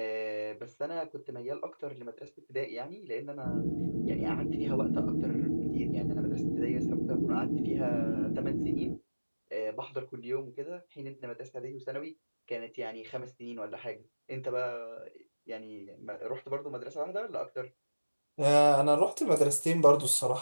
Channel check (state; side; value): inverted; both; correlation -1.00